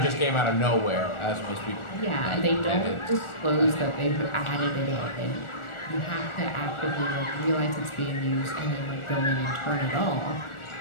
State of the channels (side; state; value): right; late; 1.4 ms